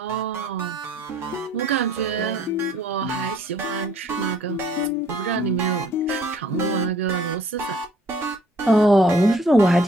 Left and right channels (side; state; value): both; normal; correlation 0.59